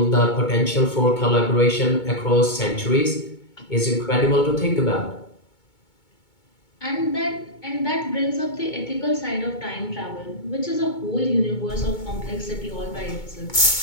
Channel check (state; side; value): late; right; 2.2 ms